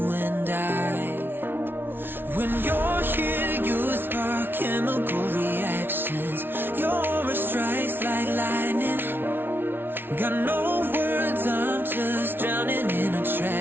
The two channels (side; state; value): left; late; 0.10 ms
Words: and I. When you're here, you spark chemical reactions. Your aura strikes like lightning. Got no words, I'm just drowning in